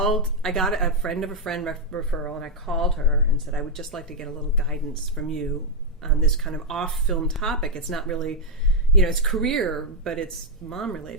a friend of a friend referral, and I called her and said, I would just like to get a little guidance from you on this kind of off-film topic. It's not really, it's career, but it's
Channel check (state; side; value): normal; both; correlation -0.02